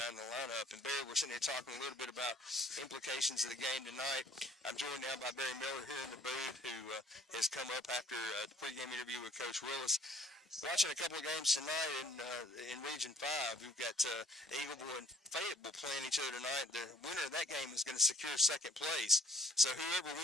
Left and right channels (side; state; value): both; normal; correlation 0.57